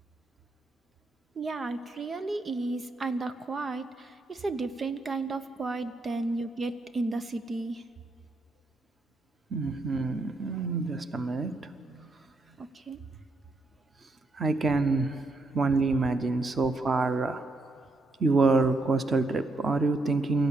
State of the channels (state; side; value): quieter; left; 3.0 dB